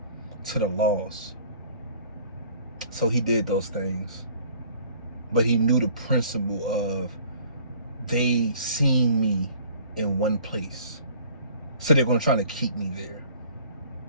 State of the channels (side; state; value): both; inverted; correlation -0.53